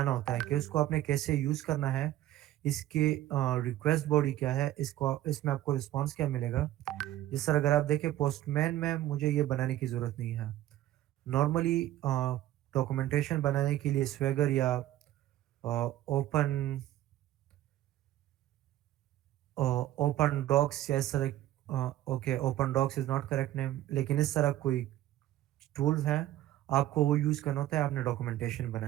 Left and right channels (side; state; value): left; quieter; 14.0 dB